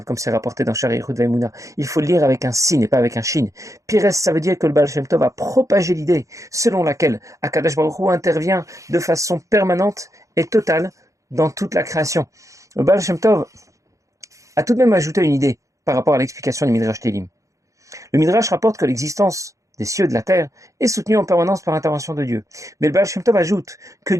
comme c'est rapporté dans Sha'ar Yichud V'Emunah. Il faut le lire avec un sin et pas avec un shin. Pires, ça veut dire que le Baal Shem Tov a propagé l'idée selon laquelle Akadosh Baruch Hu intervient de façon permanente et totale dans toute la création. Le Baal Shem Tov a tout de même ajouté une idée par rapport à l'explication du Midrash Teilim. Le Midrash rapporte que l'existence des cieux et de la terre est soutenue en permanence par l'intervention de Dieu. Mais le Baal Shem Tov ajoute que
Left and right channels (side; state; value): left; late; 0.15 ms